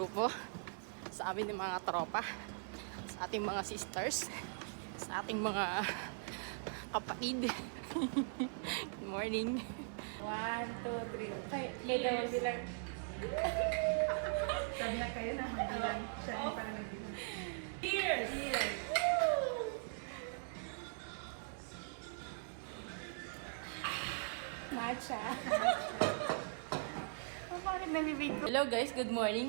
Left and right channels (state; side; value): silent; left; digital silence